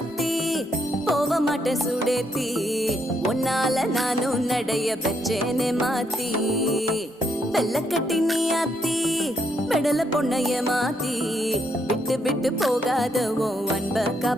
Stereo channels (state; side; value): normal; both; correlation 0.75